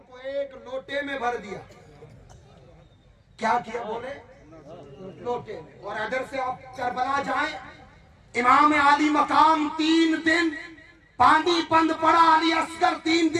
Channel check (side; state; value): both; identical; correlation 1.00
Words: को एक लोटे में भर दिया। क्या किया बोले, लोटे में। और अदर से आप करबला जाए, इमाम आली मकाम 3 दिन पानी बंद पड़ा, अली असगर 3